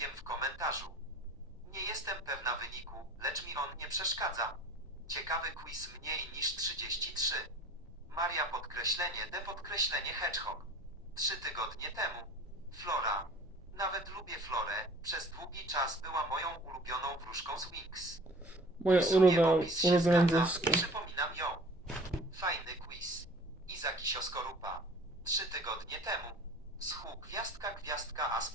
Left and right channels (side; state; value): both; normal; correlation 0.45